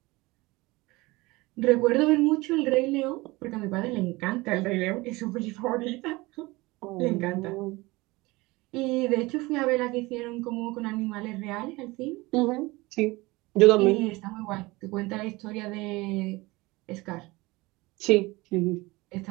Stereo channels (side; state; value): left; quieter; 22.0 dB